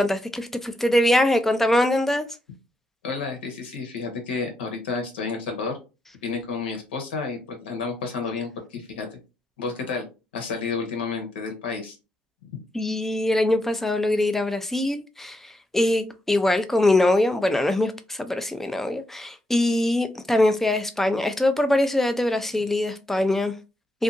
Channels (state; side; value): normal; both; correlation 0.82